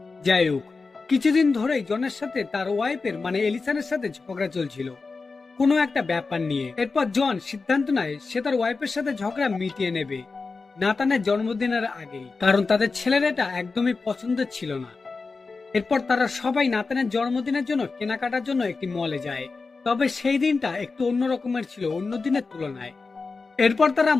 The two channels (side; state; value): right; quieter; 4.2 dB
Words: যাই হোক, কিছুদিন ধরেই জনের সাথে তার ওয়াইফের মানে এলিসনের সাথে ঝগড়া চলছিল কোনো একটা ব্যাপার নিয়ে। এরপর জন সিদ্ধান্ত নেয় সে তার ওয়াইফের সাথে ঝগড়া মিটিয়ে নেবে নাতানের জন্মদিনের আগেই, কারণ তাদের ছেলের এটা একদমই পছন্দের ছিল না। এরপর তারা সবাই নাতানের জন্মদিনের জন্য কেনাকাটার জন্য একটি মলে যায়, তবে সেই দিনটা একটু অন্য রকমের ছিল অন্য দিনের তুলনায়। এরপর তারা